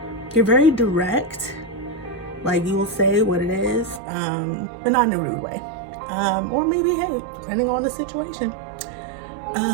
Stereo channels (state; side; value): drops out; left; at 4.0 s